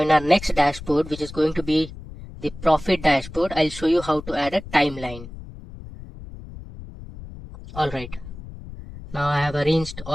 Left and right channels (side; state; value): left; noise; rumble, 14 dB below the sound